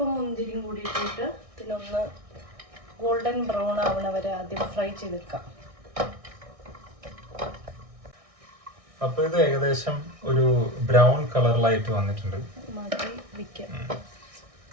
മുന്തിരിയും കൂടി ഇട്ടിട്ട് ഇതിനൊന്ന് ഗോൾഡൻ ബ്രൗൺ ആവണ വരെ ആദ്യം ഫ്രൈ ചെയ്തെടുക്കാം. അപ്പൊ ഇത് ഏകദേശം ഒരു ബ്രൗൺ കളറിലായിട്ട് വന്നിട്ടുണ്ട്. മാറ്റി വെക്കാം.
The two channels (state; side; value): late; left; 1.6 ms